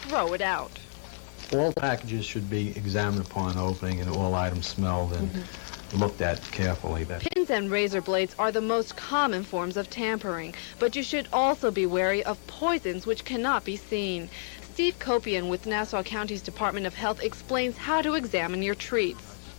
throw it out. All packages should be examined upon opening and all items smelled and looked at carefully. Pins and razor blades are the most common forms of tampering, but you should also be wary of poisons which cannot be seen. Steve Kopian with Nassau County's Department of Health explains how to examine your treats.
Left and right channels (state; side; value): silent; right; 56 dB below the other